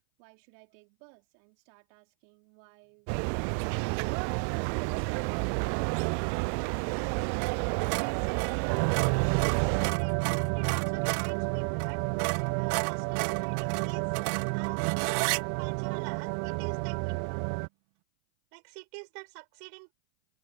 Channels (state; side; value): silent; left; 57 dB below the other